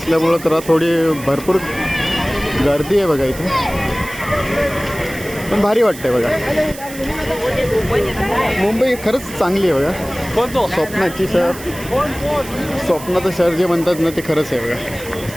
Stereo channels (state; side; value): noise; right; hiss, 15 dB below the sound